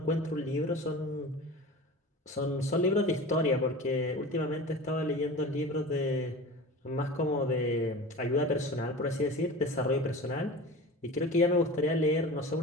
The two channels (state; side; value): normal; both; correlation 0.34